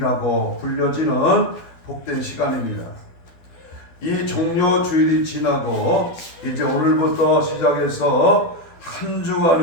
불려지는 복된 시간입니다. 이 종려주일이 지나고 이제 오늘부터 시작해서 한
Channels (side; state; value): right; late; 12 ms